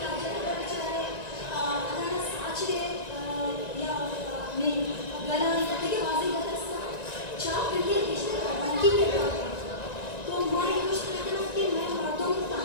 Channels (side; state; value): right; late; 1.9 ms